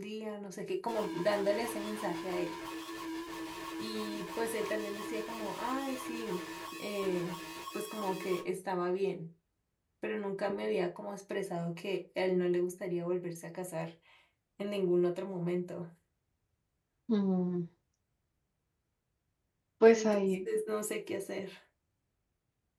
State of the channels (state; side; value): identical; both; correlation 1.00